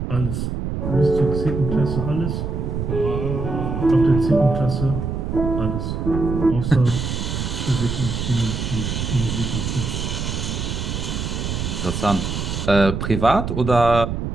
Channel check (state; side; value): noise; right; rumble, 3 dB below the sound